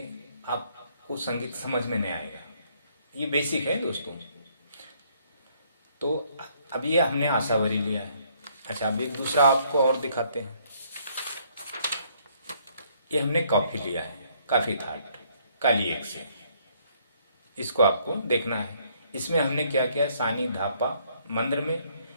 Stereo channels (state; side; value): inverted; both; correlation -0.66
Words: आपको संगीत समझ में नहीं आएगा। ये बेसिक है दोस्तों। तो अब ये हमने आशावरी लिया है। अच्छा, अब एक दूसरा आपको और दिखाते हैं। ये हमने कॉफी लिया है, काफी थाट काली 1 से। इसको आपको देखना है। इसमें हमने क्या किया है, सानी धापा मंद्र में,